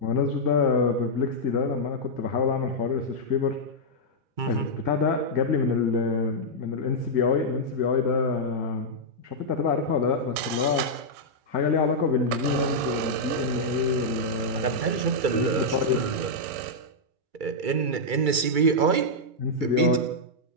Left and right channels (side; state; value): left; late; 2.3 ms